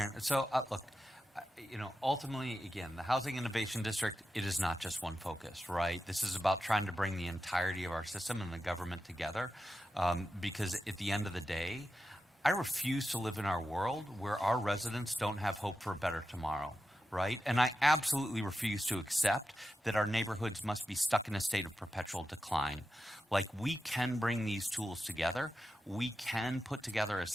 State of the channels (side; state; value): both; normal; correlation 0.90